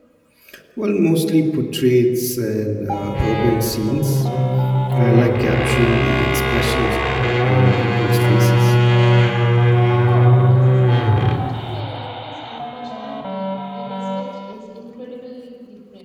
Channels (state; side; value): identical; both; correlation 1.00